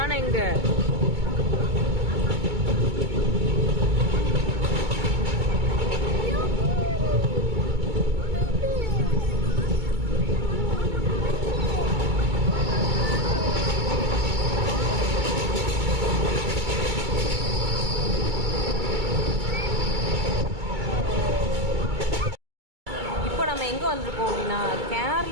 எங்க? எங்கே வந்திருக்கோம் அப்படின்னா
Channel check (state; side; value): late; left; 2.2 ms